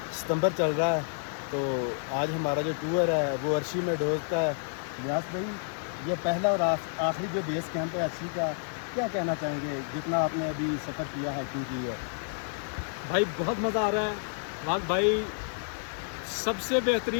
सितंबर चल रहा है, तो आज हमारा जो टूर है वो अर्शी में डोजता है। इलियास भाई, ये पहला और आखिरी जो बेस कैंप है अर्शी का, क्या कहना चाहेंगे जितना आपने अभी सफ़र किया हाइकिंग की है? भाई बहुत मज़ा आ रहा है। वाक भाई, सबसे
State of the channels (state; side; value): silent; right; digital silence